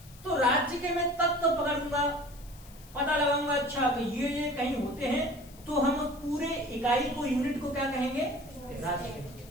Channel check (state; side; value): noise; left; hiss, 22 dB below the sound